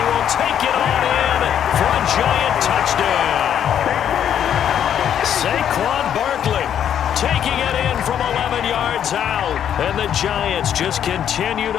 will take it on in for a giant touchdown. Saquon Barkley taking it in from 11 yards out, and the Giants just continue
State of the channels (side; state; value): right; quieter; 9.4 dB